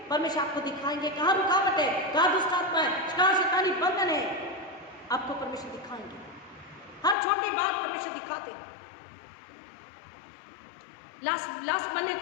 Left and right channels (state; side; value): drops out; right; at 7.2 s